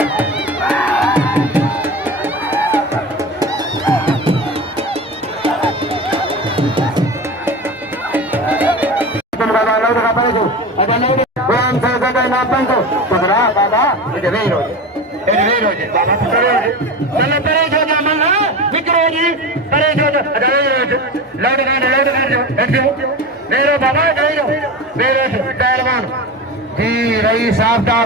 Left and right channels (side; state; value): both; normal; correlation 0.27